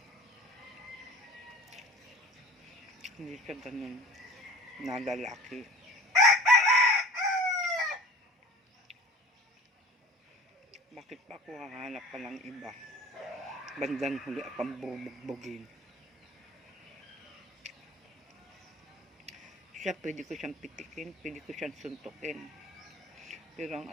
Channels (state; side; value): normal; both; correlation 0.43